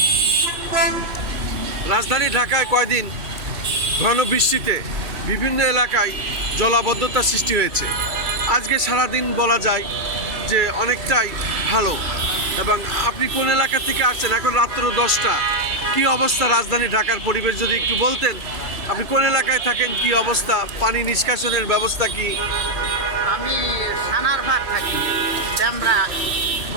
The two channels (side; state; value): left; late; 2.3 ms